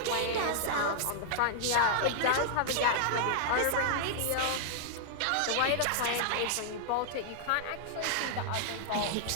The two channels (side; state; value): both; different; correlation -0.01